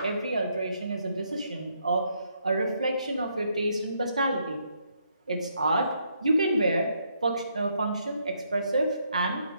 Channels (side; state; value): both; inverted; correlation -0.74